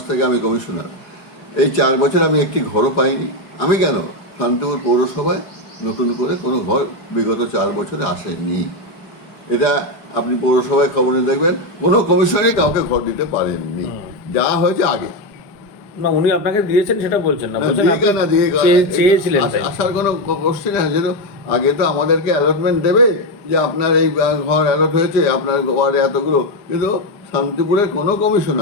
থেকে আমি কমিশনার। এই 4 বছর আমি একটি ঘরও পাইনি। আমি কেন, শান্তিপুর পৌরসভায় নতুন করে কোনো ঘর বিগত 4 বছরে আসেনি। এটা আপনি পৌরসভায় খবরে দেখবেন, কোনো কমিশনারই কাউকে ঘর দিতে পারেননি, যা হয়েছে আগে। না, উনি আপনাকে দিয়েছেন সেটা বলছেন না, বলছেন চেয়েছিলেন। আসার কোনো কোশ্চেন আছে? যেহেতু আগে তো আমাদেরকে অ্যালটমেন্ট দেবে যে আপনার এই ঘর অ্যালট হয়েছে, আপনার ওয়ার্ডে এতগুলো, কিন্তু শান্তিপুরের কোনো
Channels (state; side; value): late; right; 4.9 ms